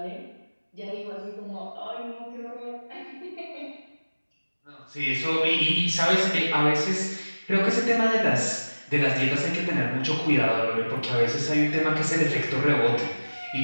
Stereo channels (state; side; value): inverted; both; correlation -1.00